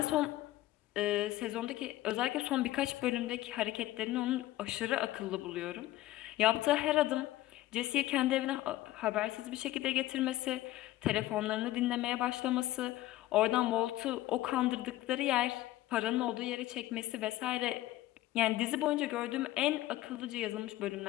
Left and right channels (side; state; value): right; quieter; 15.8 dB